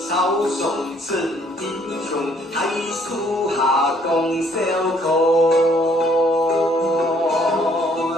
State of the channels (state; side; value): normal; both; correlation 0.64